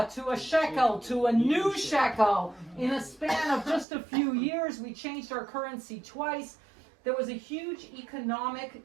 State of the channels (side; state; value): left; drops out; at 3.9 s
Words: to a shekel to a new shekel. In a span of just a few years, we changed our currency twice. There was a huge